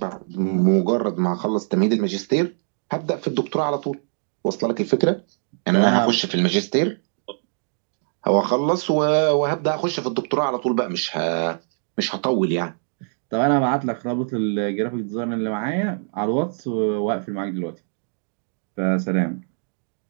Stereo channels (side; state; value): left; silent; digital silence